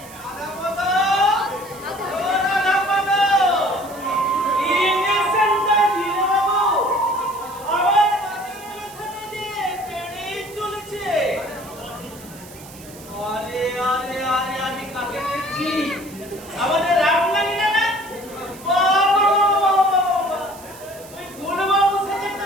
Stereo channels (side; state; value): right; noise; hiss, 19 dB below the sound